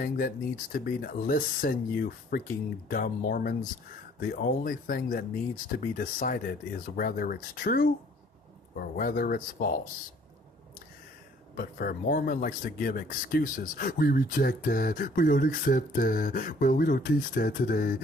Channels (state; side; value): normal; both; correlation 0.58